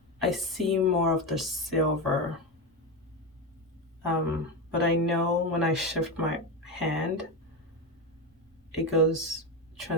I see more of the silver. But I know when I shift my hand, it goes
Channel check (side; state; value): both; normal; correlation 0.15